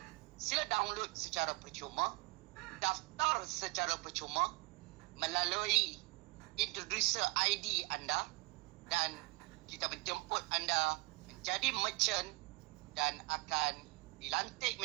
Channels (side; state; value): left; quieter; 24.6 dB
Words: Sila download secara percuma, daftar secara percuma melalui introducer ID anda, dan kita menjemput anda menjadi merchant dan akan dilantik